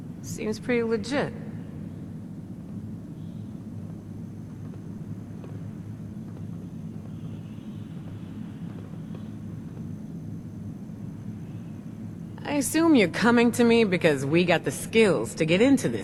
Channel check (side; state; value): both; identical; correlation 1.00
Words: Seems pretty legit. I assume you're coming to me because we got the skills to get into